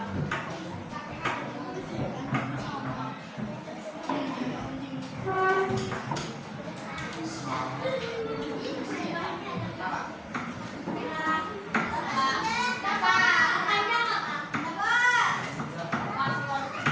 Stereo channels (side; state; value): both; identical; correlation 1.00